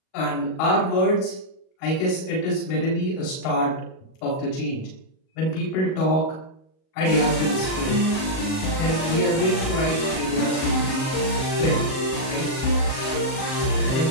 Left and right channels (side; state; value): right; late; 38 ms